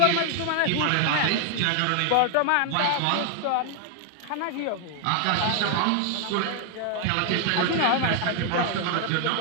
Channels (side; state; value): both; different; correlation 0.00